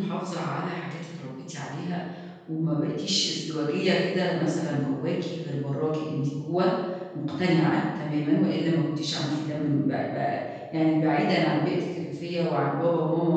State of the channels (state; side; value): identical; both; correlation 1.00